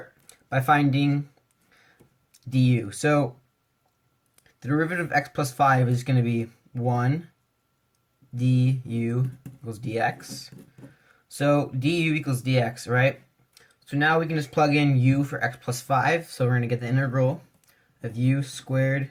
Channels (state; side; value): identical; both; correlation 1.00